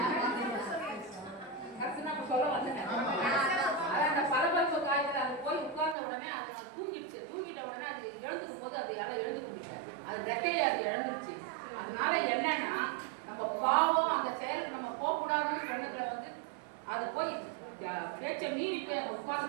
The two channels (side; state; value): left; drops out; at 6.0 s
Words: கரெக்ட் நான் சொல்ல வந்தேன். அதான் அந்த பரபரப்பு காய்ச்சல் அது போய் உட்கார்ந்த உடனே அது தூங்கிடுச்சு. தூங்கிட்ட உடனே அது எழுந்துக்கும் போது அது யாரும் எழுந்து கொண்டுட்டேன். அது ரெக்கையை அது எழுந்துருச்சு. அதனால என்னன்னா நம்ம பாவம் அந்த செயலுக்கு நம்ம போகக்கூடாதுன்னு சொன்னதுல வந்து அது போய் பேச்சை மீறி போய் அந்த